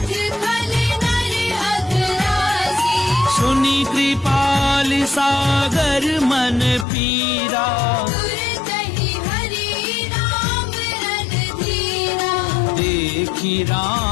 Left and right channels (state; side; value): drops out; right; at 6.9 s